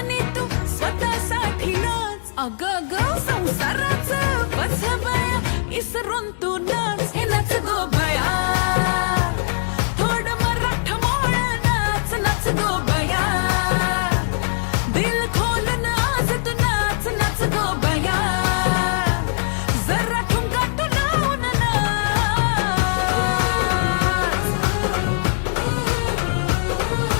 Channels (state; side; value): silent; right; digital silence